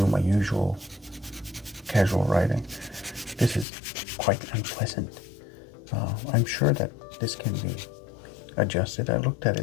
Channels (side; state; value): right; drops out; at 3.7 s